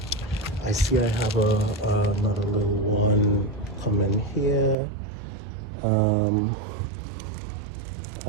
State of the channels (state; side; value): drops out; left; at 4.8 s